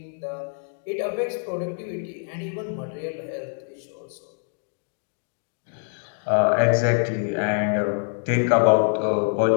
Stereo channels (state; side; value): silent; right; 57 dB below the other